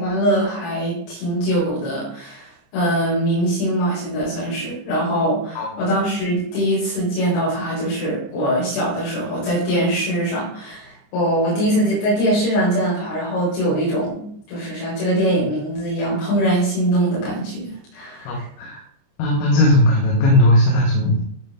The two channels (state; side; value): late; right; 29 ms